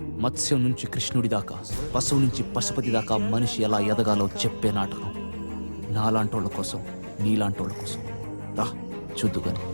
మత్స్యం నుంచి కృష్ణుడి దాకా, పశువు నుంచి పశుపతి దాకా మనిషి ఎలా ఎదగాలో చెప్పే నాటకం. నాలాంటోళ్ళ కోసం, నీలాంటోళ్ళ కోసం. రా చూద్దుగాని.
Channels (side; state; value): both; inverted; correlation -1.00